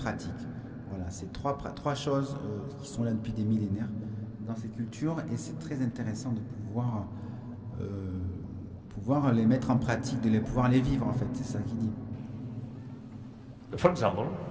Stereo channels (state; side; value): identical; both; correlation 1.00